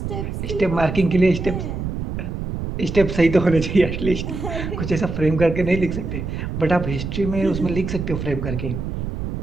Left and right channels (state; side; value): noise; right; rumble, 5 dB below the sound